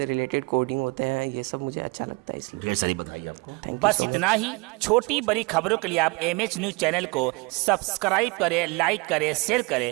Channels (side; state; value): left; quieter; 27.3 dB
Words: रिलेटेड कोडिंग होते हैं, ये सब मुझे अच्छा लगता है, इसलिए। ढेर सारी बधाई आपको। थैंक यू बस सो मच। इतना ही। छोटी बड़ी खबरों के लिए आप MH न्यूज चैनल को सब्सक्राइब करें, लाइक करें, शेयर